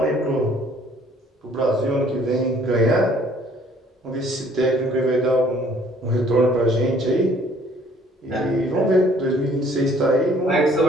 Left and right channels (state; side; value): normal; both; correlation 0.59